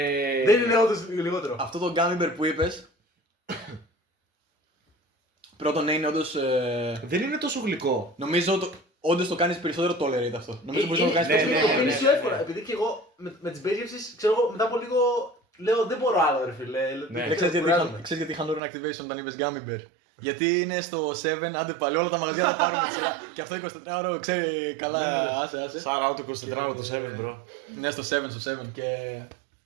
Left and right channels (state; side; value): drops out; left; at 18.6 s